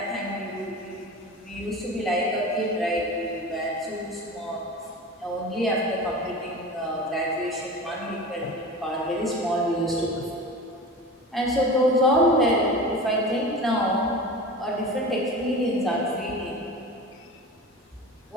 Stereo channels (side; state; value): both; normal; correlation 0.33